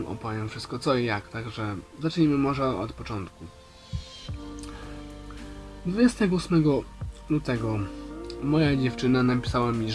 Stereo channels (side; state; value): both; identical; correlation 1.00